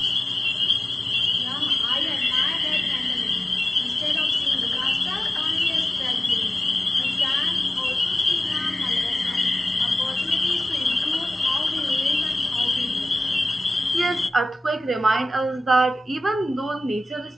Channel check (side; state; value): both; normal; correlation 0.95